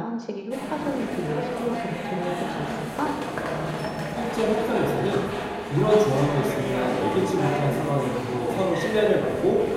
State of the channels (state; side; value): identical; both; correlation 1.00